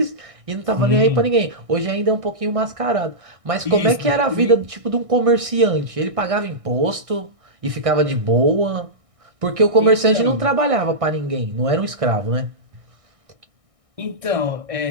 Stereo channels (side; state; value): left; late; 1.6 ms